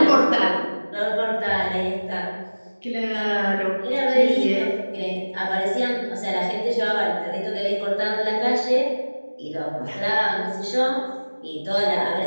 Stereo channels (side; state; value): both; inverted; correlation -1.00